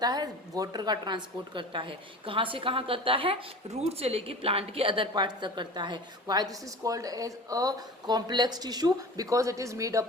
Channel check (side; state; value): both; normal; correlation 0.37